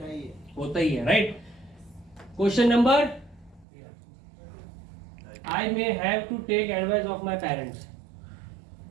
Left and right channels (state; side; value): drops out; left; at 3.7 s